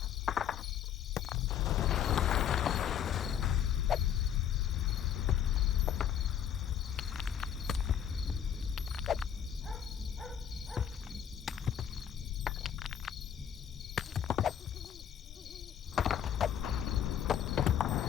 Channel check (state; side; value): quieter; right; 9.3 dB